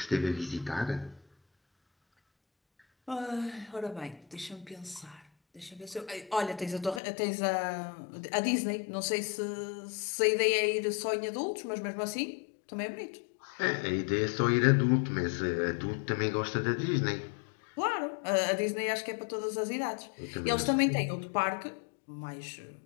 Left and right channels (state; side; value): drops out; right; at 7.0 s